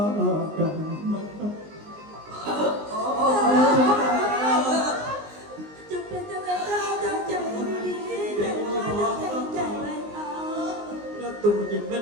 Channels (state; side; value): late; left; 19 ms